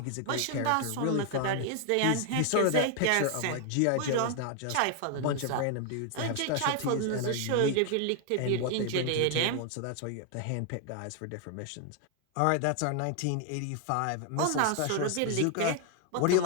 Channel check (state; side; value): different; both; correlation 0.00